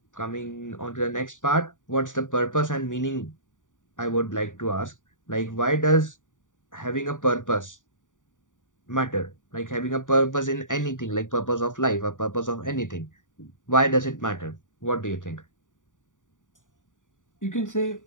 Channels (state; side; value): late; right; 0.87 ms